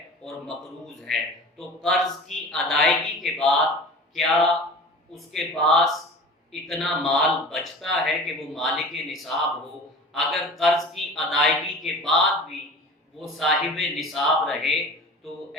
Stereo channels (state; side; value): normal; both; correlation 0.38